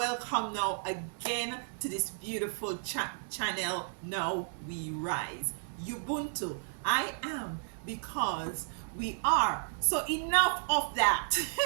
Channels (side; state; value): left; silent; 56 dB below the other